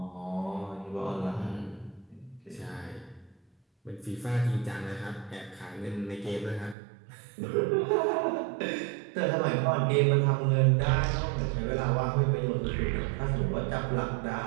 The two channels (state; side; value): drops out; left; at 6.8 s